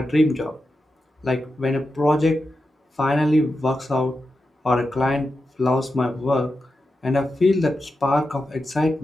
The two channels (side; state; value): both; normal; correlation 0.89